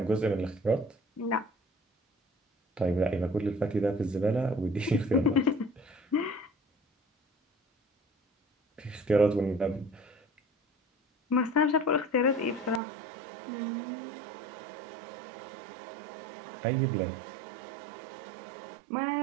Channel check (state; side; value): drops out; left; at 12.8 s